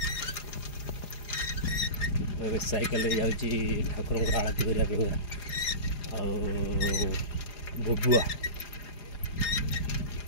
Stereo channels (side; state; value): right; late; 4.9 ms